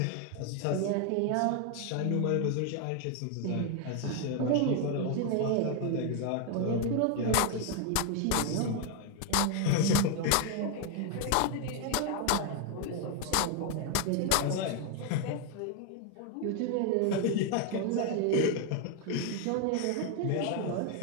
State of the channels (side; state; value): both; different; correlation 0.01